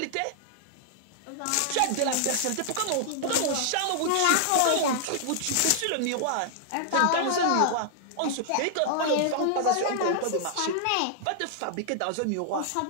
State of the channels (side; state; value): both; different; correlation -0.01